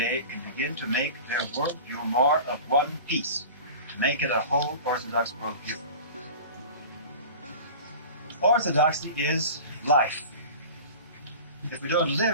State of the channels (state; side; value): inverted; both; correlation -0.37